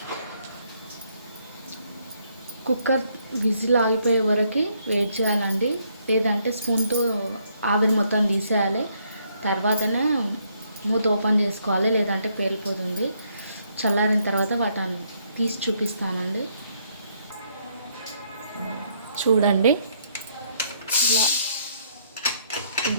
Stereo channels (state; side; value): inverted; both; correlation -0.71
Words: కుక్కర్ విజిల్ ఆగిపోయే వరకు వెయిట్ చేయాలండి. లేదంటే స్పూన్తో ఆవిరి మొత్తం తీసేయాలి. తర్వాతనే మూత ఓపెన్ చేసుకోవాలి, లేదంటే పేలిపోతుంది. చల్లారిన తర్వాత వాటిని తీసి చూపిస్తానండి. చూడండి, ఇలా